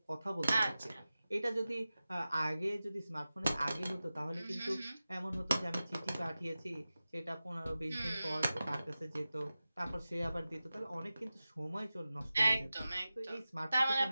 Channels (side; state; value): both; inverted; correlation -0.95